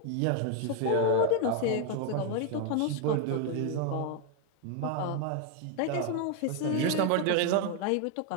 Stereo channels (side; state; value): both; different; correlation 0.01